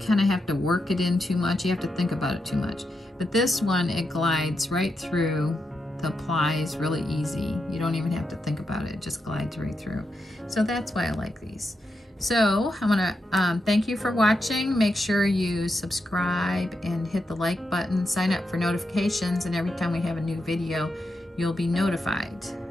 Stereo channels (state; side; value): normal; both; correlation 0.85